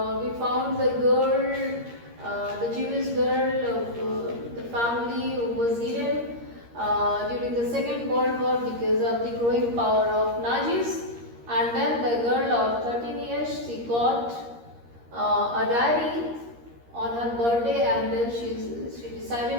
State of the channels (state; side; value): late; left; 13 ms